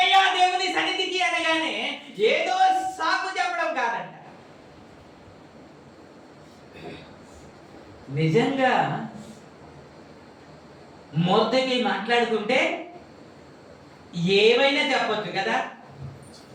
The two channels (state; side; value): identical; both; correlation 1.00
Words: దేవుని సన్నిధికి అనగానే ఏదో సాకు చెప్పడం కాదంట. నిజంగా మొదటి మాట్లాడుతుంటే ఏమైనా చెప్పొచ్చు కదా.